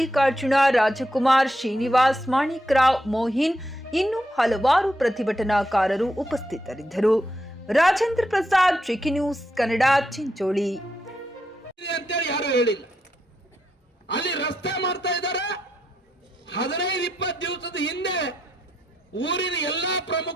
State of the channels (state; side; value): normal; both; correlation 0.81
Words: ರಾಜಕುಮಾರ್, ಶ್ರೀನಿವಾಸ್, ಮಾಣಿಕ್ರಾವ್, ಮೋಹಿನ್ ಇನ್ನು ಹಲವಾರು ಪ್ರತಿಭಟನಾಕಾರರು ಉಪಸ್ಥಿತರಿದ್ದರು. ರಾಜೇಂದ್ರ ಪ್ರಸಾದ್, ಚಿಕ್ಕಿ ನ್ಯೂಸ್ ಕನ್ನಡ, ಚಿಂಚೋಳಿ. ಯಾರು ಹೇಳಿಲ್ಲ, ಅಲ್ಲಿ ರಸ್ತೆ ಮಾಡ್ತಾ ಇದ್ದಾರೆ. 15-20 ದಿವಸದ ಹಿಂದೆ ಊರಿನ ಎಲ್ಲಾ